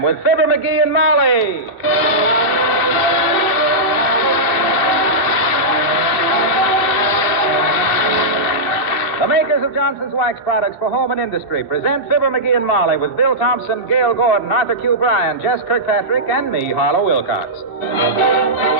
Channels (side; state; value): right; late; 2.6 ms